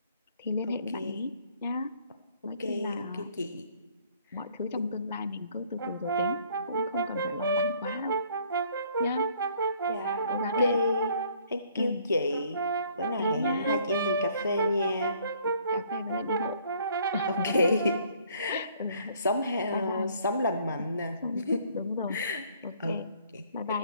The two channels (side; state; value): both; inverted; correlation -0.61